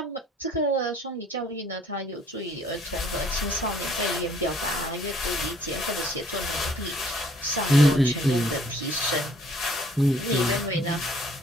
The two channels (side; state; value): both; normal; correlation 0.60